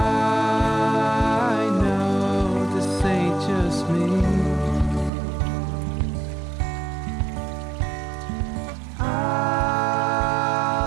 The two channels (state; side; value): drops out; left; at 5.1 s